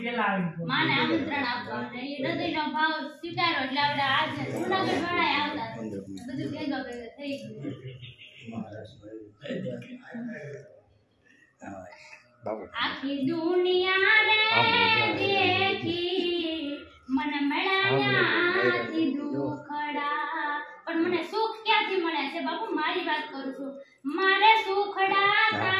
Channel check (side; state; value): both; identical; correlation 1.00